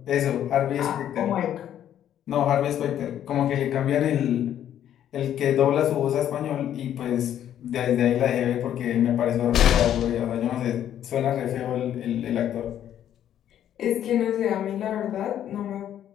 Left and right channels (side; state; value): right; quieter; 10.7 dB